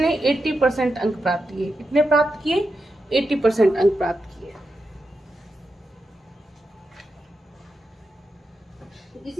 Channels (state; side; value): normal; both; correlation 0.88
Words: 80% अंक प्राप्त किए। कितने प्राप्त किए? 80% अंक प्राप्त किए।